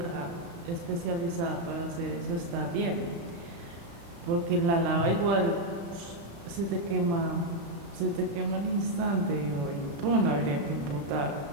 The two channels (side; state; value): left; late; 35 ms